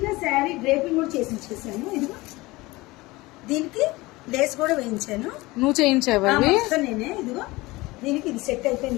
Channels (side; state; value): right; quieter; 21.0 dB